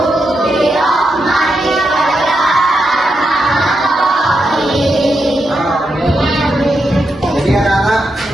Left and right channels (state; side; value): normal; both; correlation 0.85